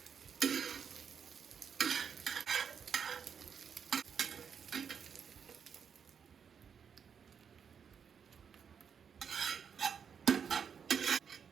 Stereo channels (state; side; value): quieter; left; 7.0 dB